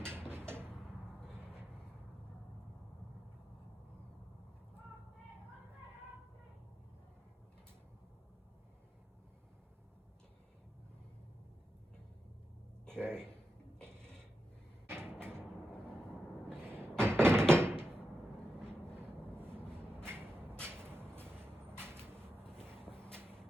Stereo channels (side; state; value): both; normal; correlation 0.88